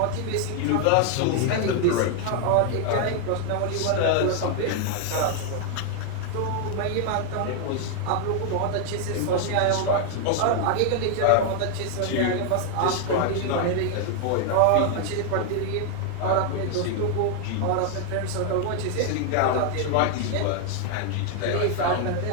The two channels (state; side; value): different; both; correlation 0.00